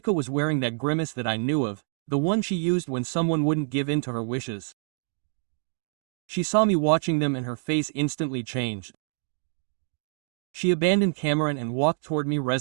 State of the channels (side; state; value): left; silent; digital silence